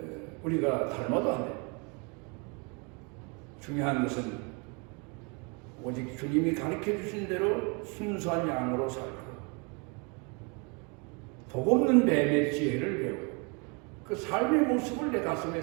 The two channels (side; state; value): left; quieter; 32.5 dB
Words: 우리가 닮아도 안 돼요. 중요한 것은 오직 주님이 가르쳐 주신 대로 순수한 양으로 살고 독없는 뱀의 지혜를 배우고 그 삶의 모습을 내 가슴에